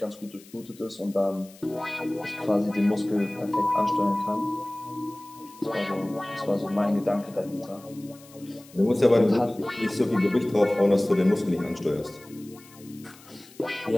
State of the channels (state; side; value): noise; left; hiss, 23 dB below the sound